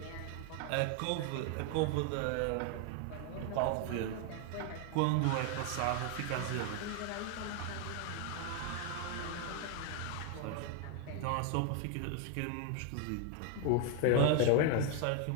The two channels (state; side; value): different; both; correlation 0.00